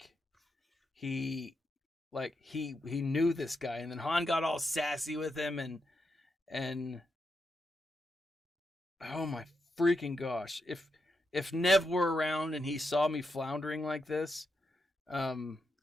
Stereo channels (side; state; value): both; normal; correlation 0.84